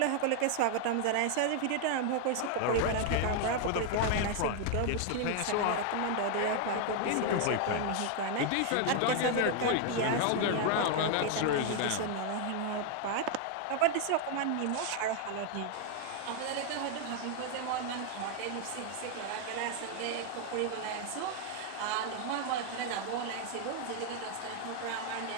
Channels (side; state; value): both; different; correlation 0.00